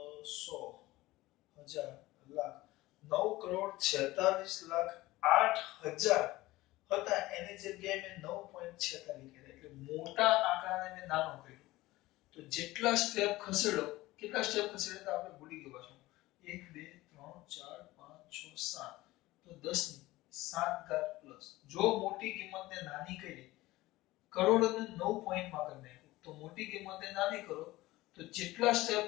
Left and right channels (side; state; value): right; quieter; 18.5 dB